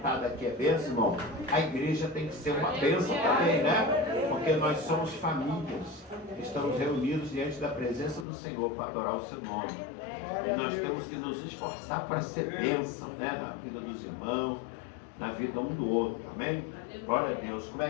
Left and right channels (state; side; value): drops out; right; at 8.2 s